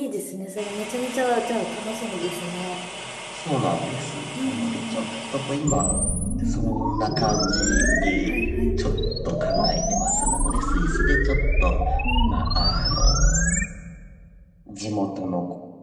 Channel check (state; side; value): identical; both; correlation 1.00